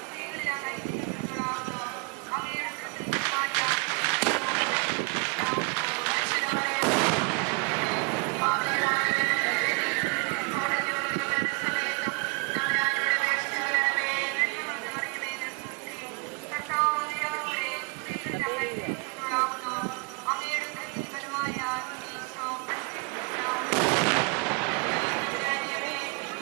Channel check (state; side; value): quieter; left; 34.3 dB